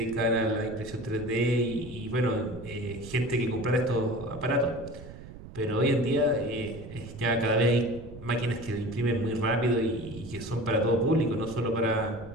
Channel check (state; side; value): noise; right; rumble, 15 dB below the sound